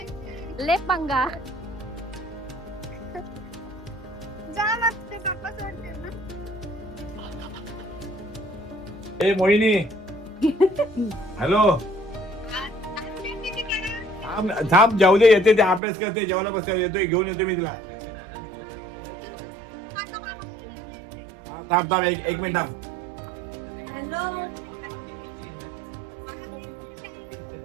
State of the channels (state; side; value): drops out; left; at 15.8 s